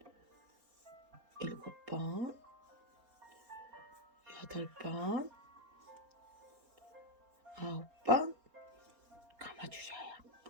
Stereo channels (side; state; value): left; late; 4.3 ms